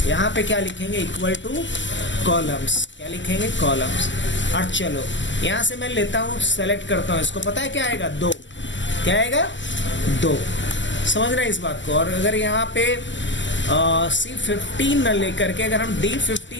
यहाँ पे क्या लिखेंगे, इक्वल टू कॉलम्स। क्या लिखेंगे? कॉलम्स। और चलो यहाँ से मैं लेता हूँ, सेलेक्ट करता हूँ इसको। पता है क्या आएगा? 2। क्या आएगा? 2। समझ रहे हैं इस बात को? और अगर यहाँ पे C15 न लेकर के अगर हम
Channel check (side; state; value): right; late; 0.54 ms